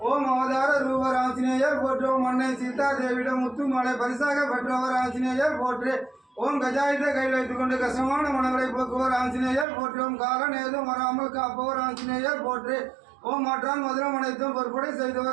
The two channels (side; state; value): left; drops out; at 9.7 s